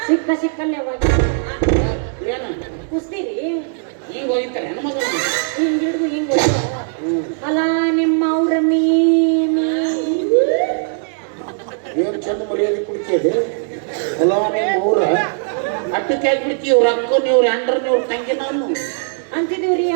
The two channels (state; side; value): silent; left; digital silence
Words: ಸಿಕ್ಕಲ್ಲೇ ಕುಸ್ತೀರಿ ಹಿಂಗ ಹೋಗ್ತಾರೆ ಹೆಣ್ಮಕ್ಳು. ಹಿಂಗ್ ಹಿಡಿದು ಹಿಂಗ್ ಅಲ್ಲ ನಿಮ್ಮ ಅವ್ರ ಮೀ ಹಾಕಿದೆ ಮೂರ ಅಟ್ಟಕ್ಕೆ ಹಾಕ್ಬಿಡ್ತಿ ಇವ್ರ ಅಕ್ಕ ಇವ್ರ ಅಂಡ್ರ ಇವ್ರ ತಂಗಿ ನಾನು ಅಂತಿದೀವ್ರಿ